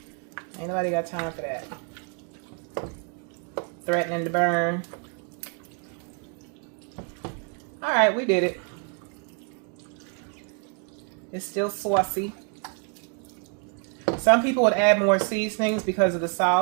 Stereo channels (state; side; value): quieter; left; 39.4 dB